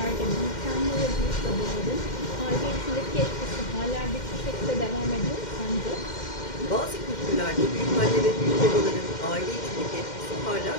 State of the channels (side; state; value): right; late; 2.1 ms